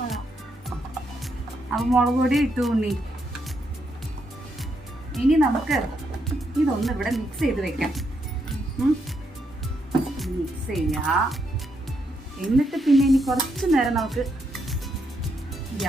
അപ്പൊ മുളക് പൊടി ഇട്ടു ഉണ്ണി. ഇനി നമുക്ക് ഇതൊന്ന് ഇവിടെ മിക്സ് ചെയ്ത് വെക്കാം. മിക്സ് ചെയ്യാ. എന്നിട്ട് പിന്നെ ഇനി കുറച്ചു നേരം നമുക്ക്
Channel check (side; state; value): both; normal; correlation 0.78